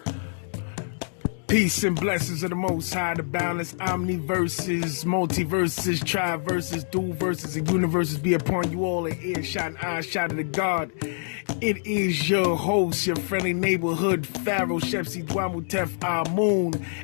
Peace and blessings of the Most High, the balance, omniverses, multiverses, triverses, dual verses, and universes be upon you all in earshot and eyeshot of the God. It is your host, your friendly neighborhood Pharaoh, Shepsi Dwamutef Amun,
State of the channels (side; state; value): right; silent; digital silence